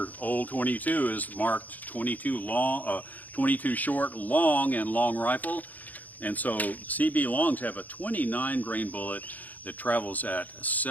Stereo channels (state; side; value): late; right; 0.081 ms